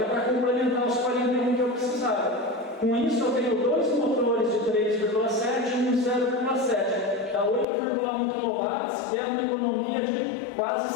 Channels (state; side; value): drops out; right; at 7.7 s